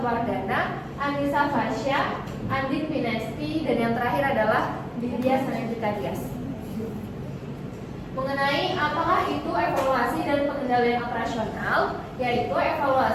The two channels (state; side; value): identical; both; correlation 1.00